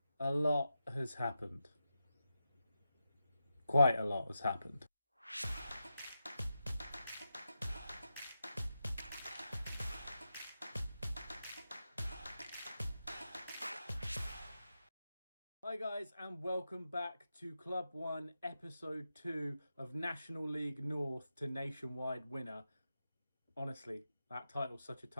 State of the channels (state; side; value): inverted; both; correlation -0.88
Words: a lot has happened. Quite a lot has happened. Hi guys, and welcome back to Club 1, Episode 2 of National League North to Nationwide Winner. Honestly, that title's such a